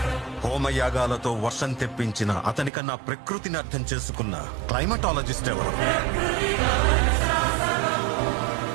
హోమయాగాలతో వర్షం తెప్పించిన అతనికన్నా ప్రకృతిని అర్థం చేసుకున్న క్లైమటాలజిస్ట్ ఎవరు?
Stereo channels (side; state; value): left; drops out; at 2.7 s